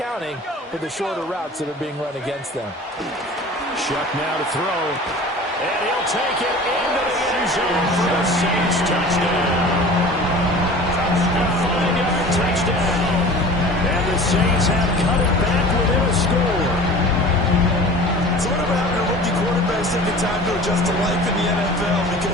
for the shorter routes that are being run against them. Shuck now to throw. And he'll take it into the end zone for the Saints touchdown. A 5-yard touchdown. And the Saints have cut it back within a score. So whatever happened to rookie quarterbacks taking time to adjust to life in the NFL?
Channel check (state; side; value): normal; both; correlation 0.41